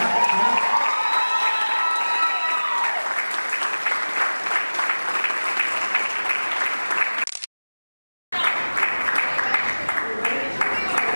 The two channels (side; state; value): both; inverted; correlation -1.00